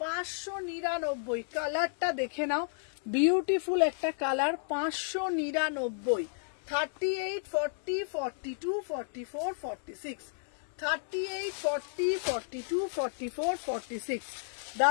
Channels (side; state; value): right; silent; 56 dB below the other